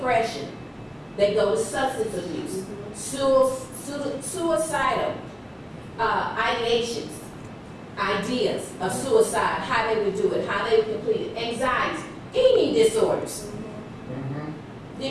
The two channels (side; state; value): both; identical; correlation 1.00